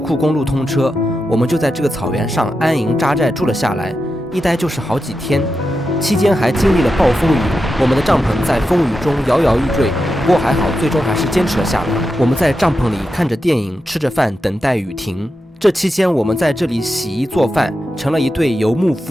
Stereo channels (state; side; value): normal; both; correlation 0.89